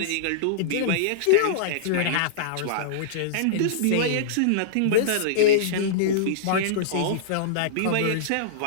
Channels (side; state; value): both; different; correlation -0.03